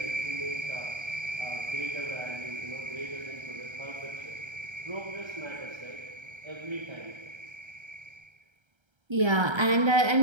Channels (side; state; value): left; late; 1.3 ms